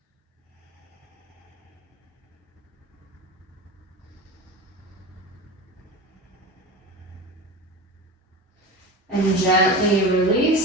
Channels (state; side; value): normal; both; correlation 0.29